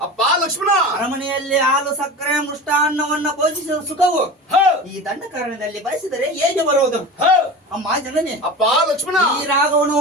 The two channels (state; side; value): normal; both; correlation 0.31